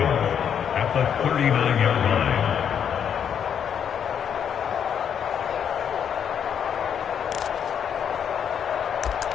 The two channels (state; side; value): quieter; right; 8.2 dB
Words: the 39-yard line.